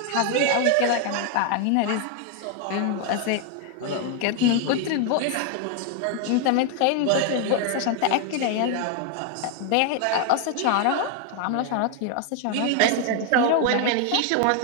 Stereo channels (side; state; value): both; different; correlation 0.00